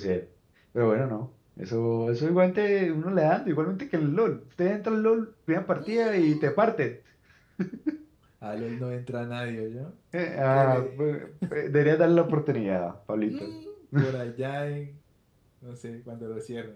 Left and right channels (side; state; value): both; identical; correlation 1.00